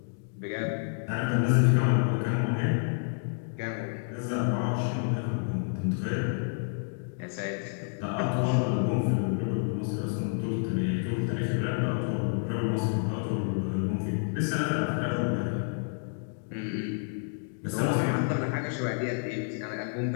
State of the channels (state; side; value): silent; right; digital silence